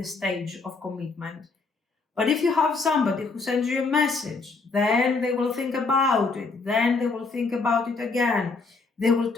stage of commitment. But if you have somebody who sends you a message, then they will think about it, then they will think about it again, they will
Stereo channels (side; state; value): right; quieter; 4.1 dB